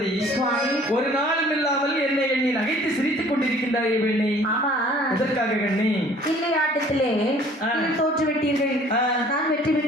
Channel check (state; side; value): normal; both; correlation 0.53